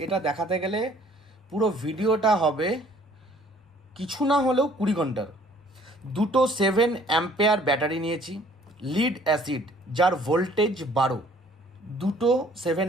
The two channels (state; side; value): normal; both; correlation 0.57